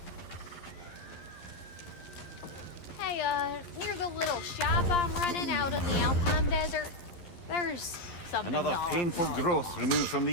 Near the little shop I'm running out in the Alpine Desert, there's something Another y'all painful probably growth lost. removed from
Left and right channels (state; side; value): late; right; 11 ms